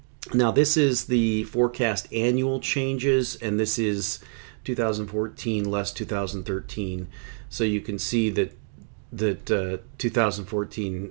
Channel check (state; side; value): silent; left; 61 dB below the other